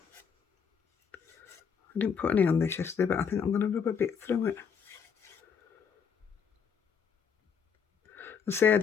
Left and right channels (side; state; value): right; quieter; 6.7 dB